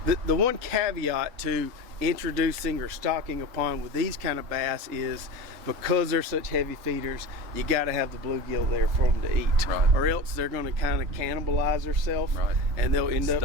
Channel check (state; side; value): late; left; 3.7 ms